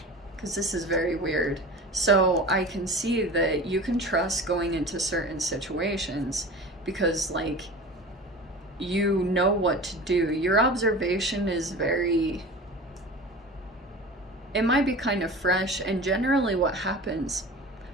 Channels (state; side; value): normal; both; correlation 0.35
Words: Because this is very weird. So I can see that you can trust going into certain situations because, like, you know what to do. Your observation is very, it might be kind of fresh. And generally what happens,